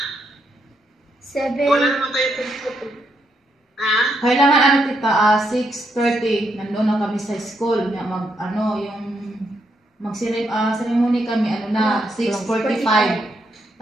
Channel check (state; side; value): normal; both; correlation 0.78